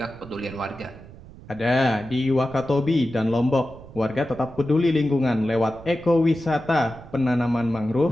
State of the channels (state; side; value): noise; right; rumble, 19 dB below the sound